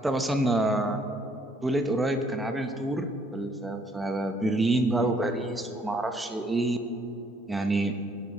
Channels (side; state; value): both; normal; correlation 0.66